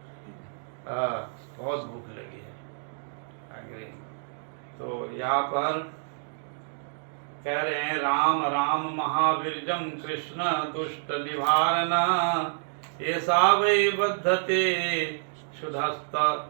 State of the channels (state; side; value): silent; left; digital silence